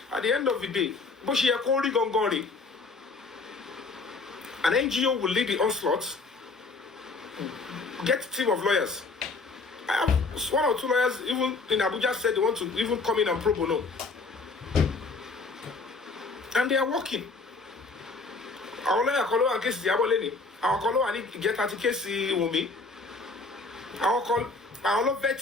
at the end of the day, an NGO will lead the onslaught, get a team of lawyers. I have 1 or 2 lawyers even in Abuja said they want to even come in and pro bono. And they are working. Our lawyer against the Aboleni. àwọn kan ló wà ní ìjẹta ti kéèsì Wunmi, àwọn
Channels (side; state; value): right; quieter; 3.8 dB